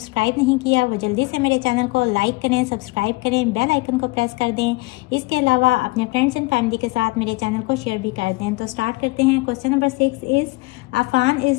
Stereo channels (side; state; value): right; quieter; 23.1 dB